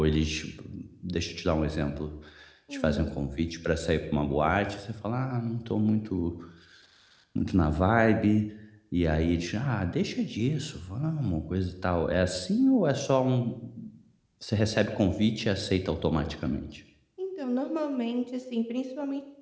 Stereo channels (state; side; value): identical; both; correlation 1.00